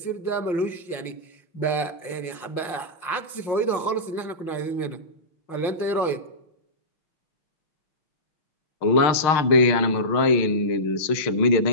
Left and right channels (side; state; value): right; late; 6.5 ms